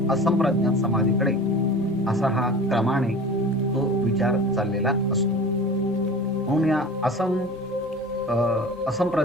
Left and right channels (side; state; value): both; normal; correlation 0.37